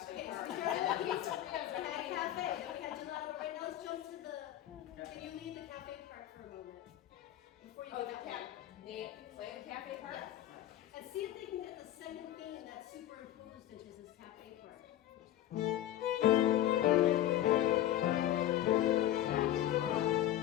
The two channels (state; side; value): quieter; right; 12.6 dB